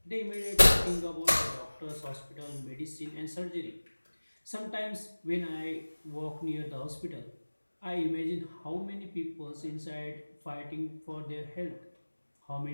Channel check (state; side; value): inverted; both; correlation -1.00